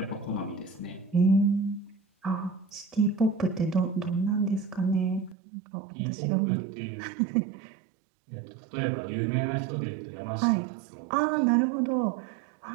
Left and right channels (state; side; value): drops out; left; at 5.4 s